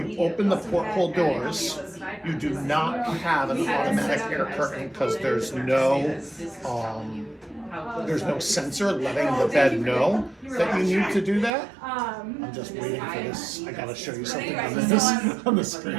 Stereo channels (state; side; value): drops out; left; at 11.5 s